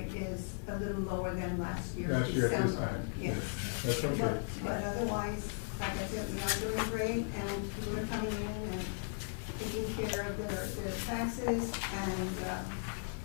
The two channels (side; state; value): right; silent; digital silence